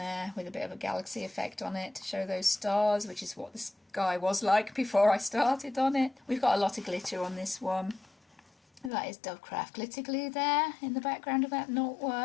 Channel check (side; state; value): right; drops out; at 8.9 s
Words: with a bit of a galaxy effect on it to show those stars, which is what the sky was like before I started on it. We've got a lot of glitter on this one. That is Dovecraft glitter glue there in the background of that